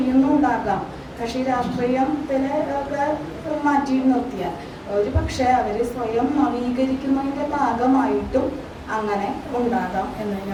കക്ഷി രാഷ്ട്രീയത്തിലെ ഒക്കെ മാറ്റി നിർത്തിയാൽ ഒരു പക്ഷേ അവർ സ്വയം നവീകരിക്കുന്നതിൻ്റെ ഭാഗമായിട്ടും അങ്ങനെ ഉണ്ടാകാം എന്ന്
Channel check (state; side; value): identical; both; correlation 1.00